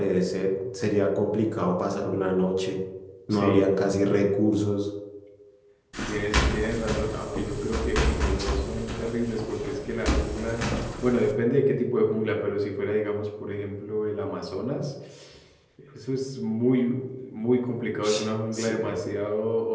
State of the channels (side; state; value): both; identical; correlation 1.00